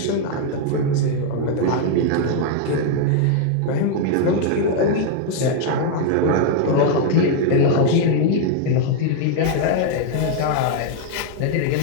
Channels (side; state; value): both; different; correlation 0.00